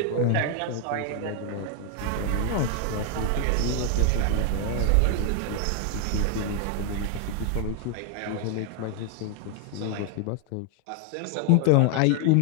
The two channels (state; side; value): different; both; correlation 0.00